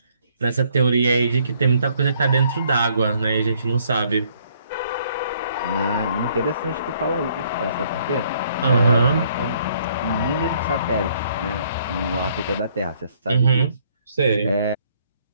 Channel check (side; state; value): both; inverted; correlation -0.65